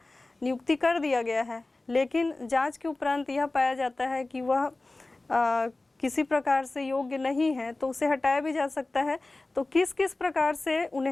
नियुक्ति कर दिया गया है, लेकिन जांच के उपरांत यह पाया जाता है कि वह किसी प्रकार से योग्य नहीं है, तो उसे हटाया भी जा सकता है। तो किस किस प्रकार से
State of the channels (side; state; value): right; quieter; 3.1 dB